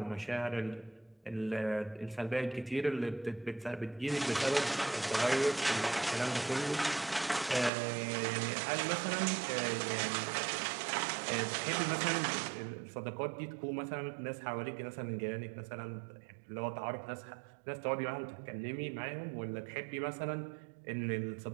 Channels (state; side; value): drops out; left; at 7.7 s